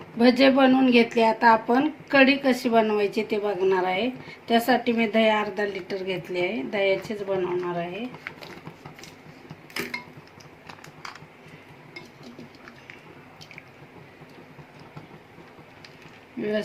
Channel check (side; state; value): both; identical; correlation 1.00